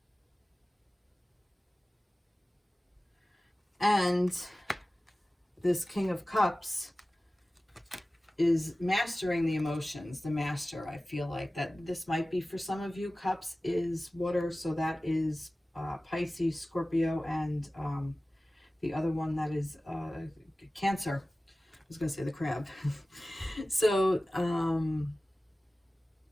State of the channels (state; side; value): normal; both; correlation 0.97